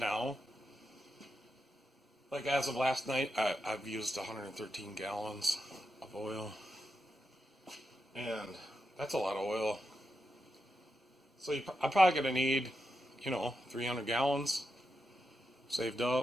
Like as of last night, I've used 113 gallons of oil, and that's a lot of oil. So I'm probably going to need, 300 gallons saved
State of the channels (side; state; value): both; normal; correlation 0.87